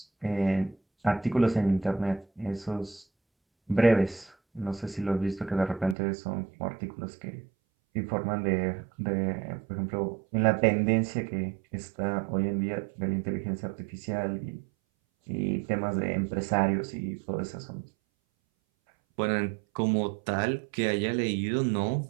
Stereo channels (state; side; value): drops out; left; at 6.0 s